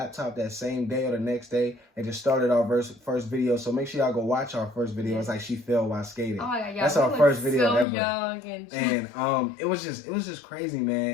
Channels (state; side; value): drops out; right; at 7.9 s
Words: that same day or the next day and just started our first video. So make sure y'all go watch our first video. It's like she fell while skating. Oh my God, that's our first video ever. Young and it was just crazy,